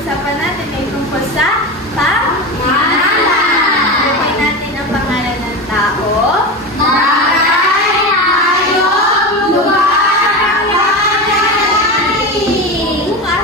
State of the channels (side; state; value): both; normal; correlation 0.22